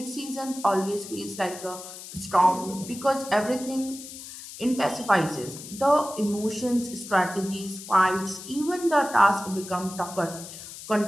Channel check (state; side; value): noise; left; hiss, 13 dB below the sound